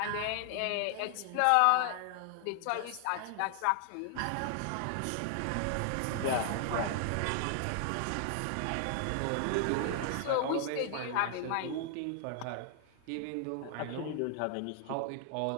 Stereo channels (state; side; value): different; both; correlation 0.00